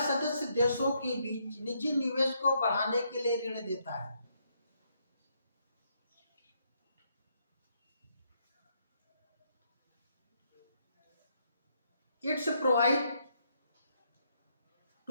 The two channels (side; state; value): both; inverted; correlation -0.75